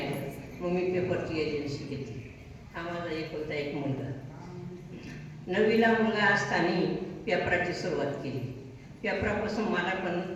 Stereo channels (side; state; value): both; identical; correlation 1.00